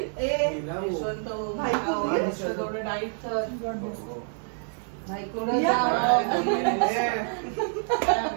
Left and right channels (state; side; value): silent; left; 60 dB below the other